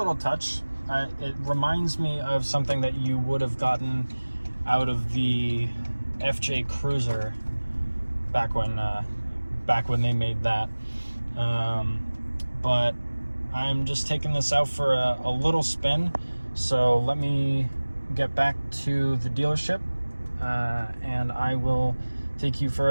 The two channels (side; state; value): both; inverted; correlation -1.00